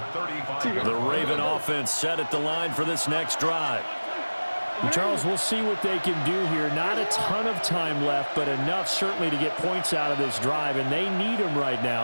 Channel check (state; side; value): inverted; both; correlation -1.00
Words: 35. The Raven offense set at the line for this next drive. And Charles, we'll see what they can do here. Not a ton of time left, but enough certainly to get points out of this drive, and they need them right